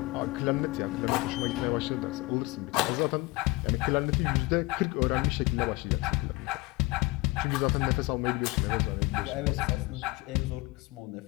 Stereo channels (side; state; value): right; quieter; 22.5 dB